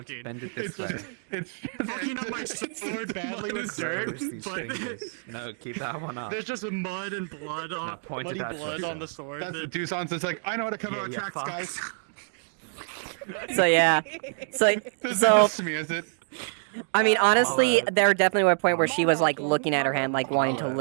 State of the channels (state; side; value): silent; left; digital silence